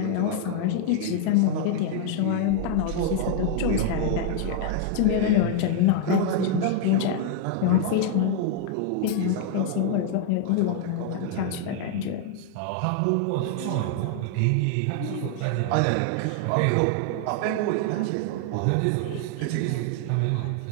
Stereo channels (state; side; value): different; both; correlation 0.00